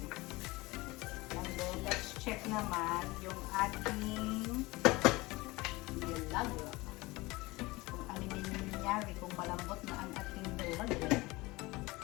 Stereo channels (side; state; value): right; quieter; 21.9 dB